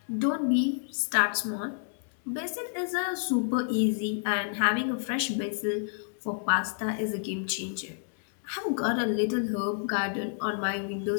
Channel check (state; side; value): silent; right; digital silence